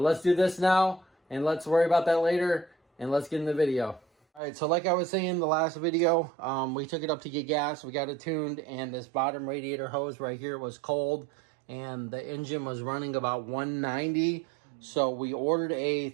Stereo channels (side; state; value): left; drops out; at 4.4 s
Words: let's do this now, and let's worry about that later, and let's get in the video. All right, so like I was saying in the last video, we took it up to get gas. We got it tuned, and this bottom radiator hose right here was cold, and the engine was running about 190. So we ordered a